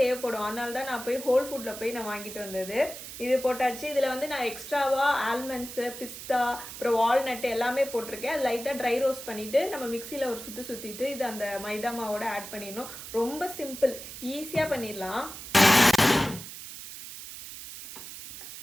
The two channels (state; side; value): noise; right; hiss, 11 dB below the sound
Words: அதனால தான் நான் போய் ஹோல் ஃபுட்டில் போய் நான் வாங்கிட்டு வந்தது. இது போட்டாச்சு. இதில் வந்து நான் எக்ஸ்ட்ராவாக ஆல்மண்ட்ஸு, பிஸ்தா, அப்புறம் வால்நட்டு எல்லாமே போட்டிருக்கேன். அது லைட்டாக ட்ரை ரோஸ்ட் பண்ணிவிட்டு நம்ம மிக்சியில் ஒரு சுற்றிட்டு இது அந்த மைதா மாவோட ஆட் பண்ணிடணும். ரொம்ப சிம்பிள், ஈஸியாக பண்ணிடலாம்.